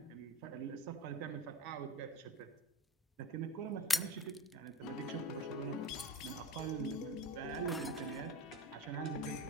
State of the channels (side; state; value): both; normal; correlation 0.32